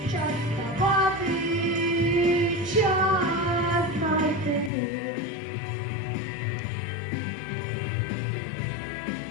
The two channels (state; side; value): drops out; right; at 4.7 s